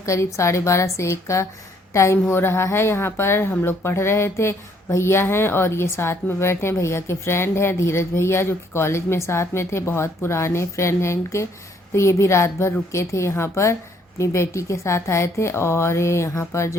करीब 12:30 से 1 का टाइम हो रहा है। यहाँ पर हम लोग पढ़ रहे थे, भैया हैं और ये साथ में बैठे हैं, भैया के फ्रेंड हैं धीरज भैया जो कि कॉलेज में साथ में थे, बहुत पुराने फ्रेंड हैं इनके। तो ये भी रात भर रुके थे यहाँ पर, अपनी बेटी के साथ आए थे। और यहाँ पर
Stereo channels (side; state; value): both; normal; correlation 0.66